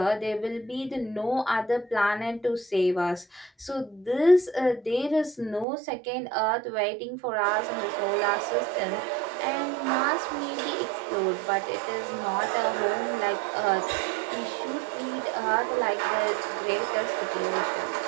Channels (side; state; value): left; drops out; at 5.7 s